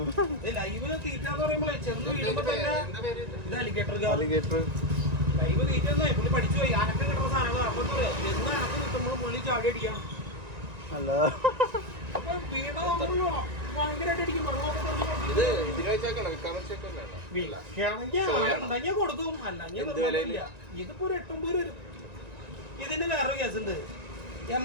ലൈവ് തീറ്റ എന്ന് പറയുമ്പോഴേ ചെറുത് വീഴുമ്പോ തന്നെ ഇത് അലിഗേറ്റർ ലൈവ് തീറ്റ പുള്ളി പഠിച്ചു പോയി. അനക്കം കിട്ടുന്ന സാധനങ്ങളാണ്. അപ്പൊ എന്താ പറയാ, എന്ന് അനക്കം കിട്ടുമ്പോൾ പുള്ളി ചാടി അടിക്കണം. അല്ല അപ്പൊ വീണ ഭയങ്കരമായിട്ട് അടിക്കും. ഉണ്ടെങ്കിൽ കൊടുക്കും, അല്ലെങ്കിൽ ഇതിപ്പോ ഒരു 8-9 വരും. ഇതിന് വേറെ കേസുണ്ട്.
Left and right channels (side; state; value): left; late; 1.9 ms